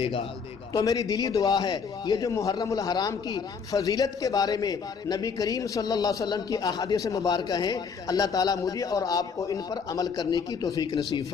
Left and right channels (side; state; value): right; quieter; 5.9 dB